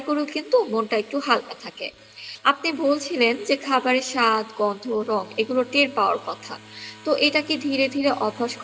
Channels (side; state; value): both; identical; correlation 1.00